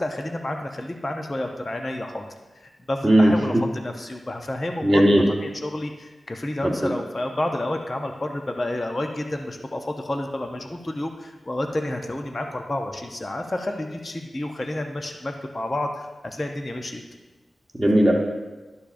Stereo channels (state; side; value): normal; both; correlation 0.96